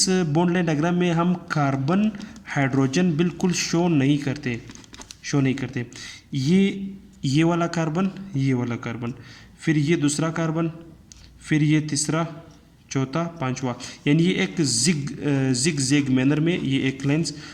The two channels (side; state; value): both; identical; correlation 1.00